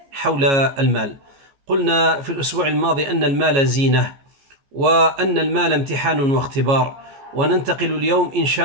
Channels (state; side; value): late; left; 15 ms